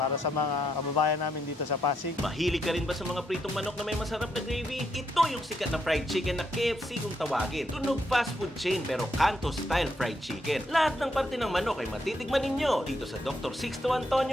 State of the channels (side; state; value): both; normal; correlation 0.78